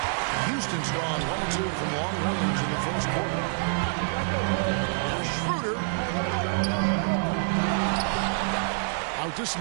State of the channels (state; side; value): silent; left; 60 dB below the other